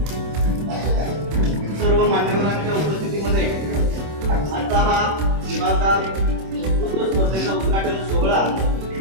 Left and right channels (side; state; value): left; late; 26 ms